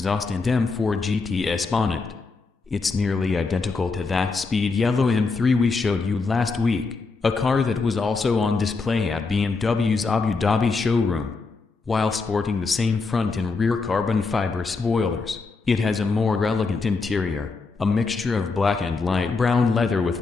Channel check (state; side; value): quieter; right; 4.2 dB